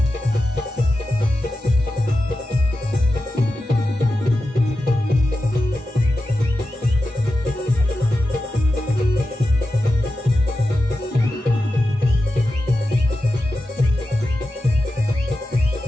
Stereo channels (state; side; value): normal; both; correlation 0.92